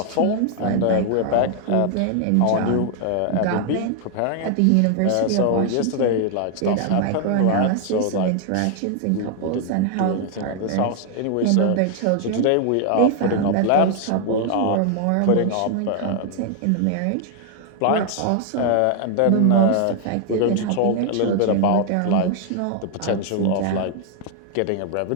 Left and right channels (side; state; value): both; different; correlation 0.00